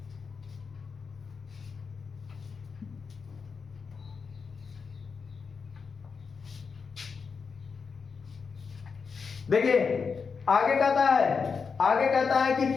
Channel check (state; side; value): quieter; right; 5.4 dB